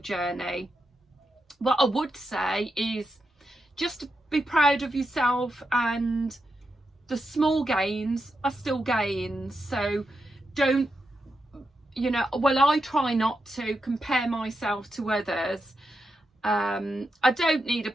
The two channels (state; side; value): normal; both; correlation 0.86